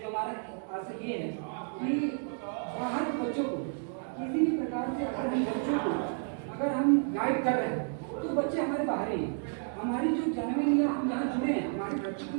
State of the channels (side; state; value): left; silent; 55 dB below the other